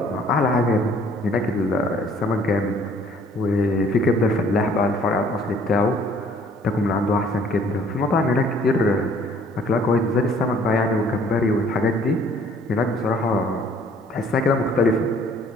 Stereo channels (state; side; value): normal; both; correlation 0.58